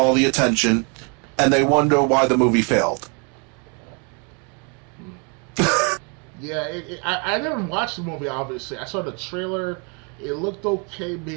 the attention, and they wonder why the movie failed. Yeah, I never watched the movie. Obviously, I saw the trailer. It looked okay,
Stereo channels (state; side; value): quieter; left; 34.9 dB